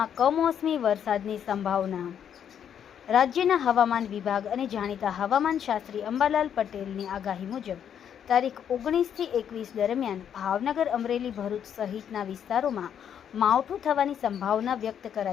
કમોસમી વરસાદની સંભાવના। રાજ્યના હવામાન વિભાગ અને જાણીતા હવામાન શાસ્ત્રી અંબાલાલ પટેલની આગાહી મુજબ તારીખ 19 થી 21 દરમિયાન ભાવનગર, અમરેલી, ભરૂચ સહિતના વિસ્તારોમાં માવઠું થવાની સંભાવના વ્યક્ત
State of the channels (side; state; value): right; quieter; 8.8 dB